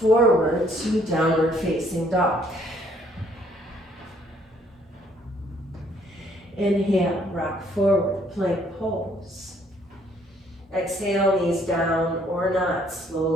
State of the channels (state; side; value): normal; both; correlation 0.65